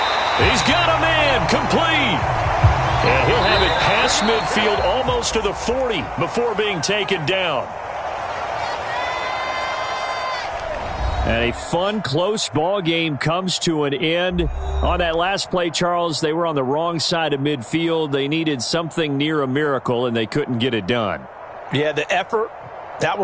He's got a man complete. And he'll have it past midfield almost to the 40 before being taken down. And a fun, close ball game comes to an end. On that last play, Charles, they were on the wrong side of midfield. They needed something near a miracle, and they couldn't get it done. Yeah, the effort, that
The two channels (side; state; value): both; identical; correlation 1.00